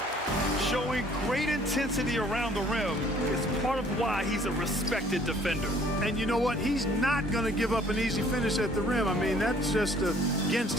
Showing great intensity around the rim is part of why he's a respected defender. And you know what? He's not going to give up an easy finish at the rim. I mean, that's just against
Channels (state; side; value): normal; both; correlation 0.58